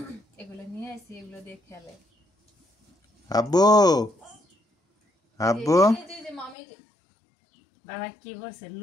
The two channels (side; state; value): right; drops out; at 6.6 s